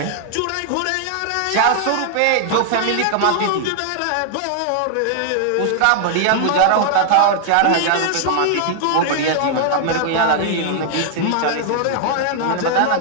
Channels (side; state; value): both; different; correlation -0.01